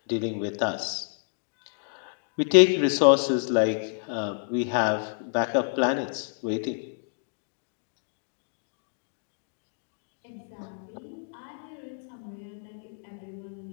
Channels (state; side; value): silent; right; digital silence